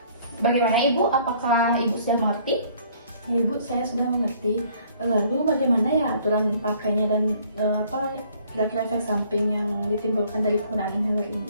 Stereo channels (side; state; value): both; inverted; correlation -0.59